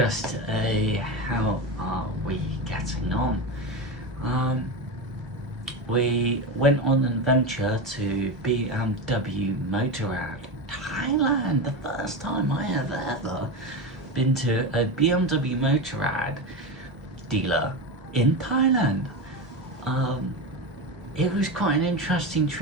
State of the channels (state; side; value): normal; both; correlation 0.19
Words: a how are we getting on? We went on an adventure to BMW Meeyaradee, Thailand. The first time I have ever been to a BMW Meeyaradee dealer in Thailand. It was quite an interesting